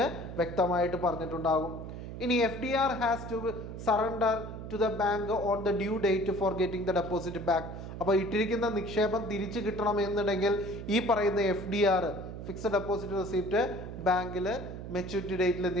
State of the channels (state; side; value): noise; right; hum, 9 dB below the sound